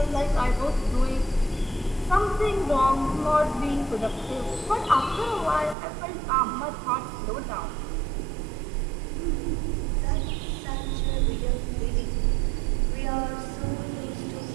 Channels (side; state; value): left; drops out; at 5.8 s